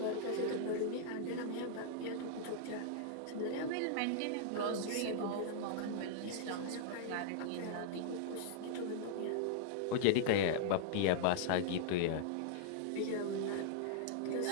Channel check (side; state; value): both; different; correlation -0.01